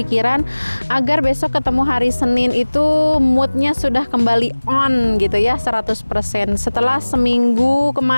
agar besok ketemu hari Senin itu moodnya sudah kembali on gitu ya, 100%. Setelah seminggu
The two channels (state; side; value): inverted; both; correlation -1.00